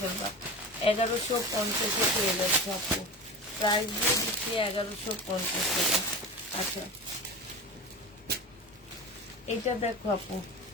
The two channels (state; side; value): normal; both; correlation 0.28